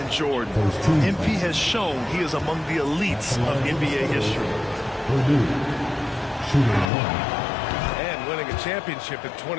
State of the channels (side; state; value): right; drops out; at 6.9 s